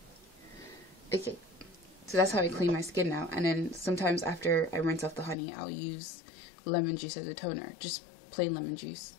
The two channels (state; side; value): drops out; right; at 5.4 s